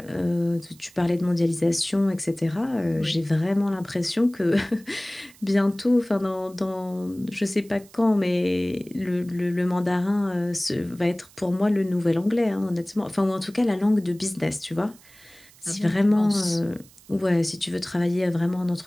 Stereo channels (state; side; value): noise; right; hiss, 25 dB below the sound